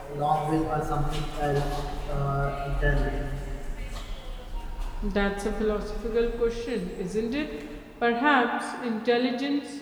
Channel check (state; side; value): identical; both; correlation 1.00